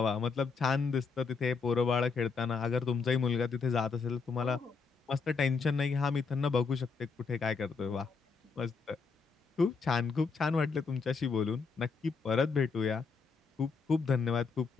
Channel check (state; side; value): quieter; right; 4.9 dB